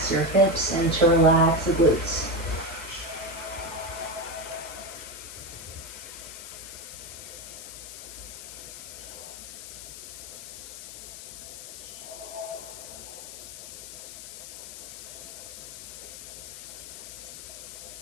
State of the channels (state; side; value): noise; left; hiss, 10 dB below the sound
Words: your hips and to relax the glutes.